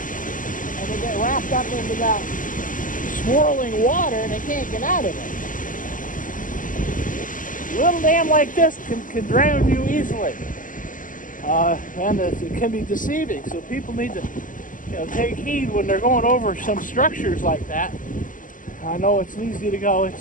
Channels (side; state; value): right; late; 0.39 ms